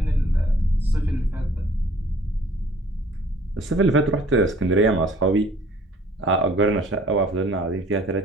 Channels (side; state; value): both; normal; correlation 0.55